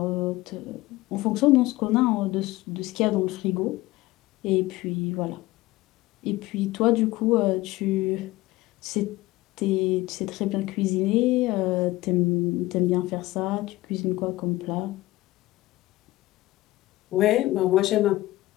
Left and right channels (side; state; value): right; quieter; 18.4 dB